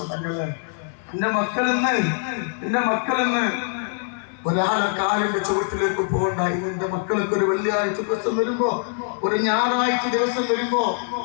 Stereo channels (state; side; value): silent; right; 57 dB below the other